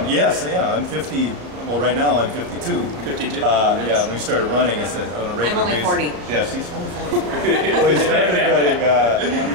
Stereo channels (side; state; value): left; late; 35 ms